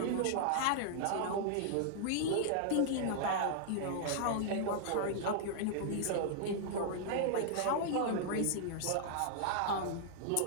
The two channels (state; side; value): different; both; correlation -0.01